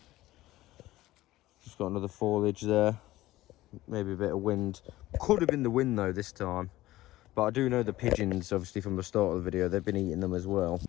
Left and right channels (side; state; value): right; quieter; 16.5 dB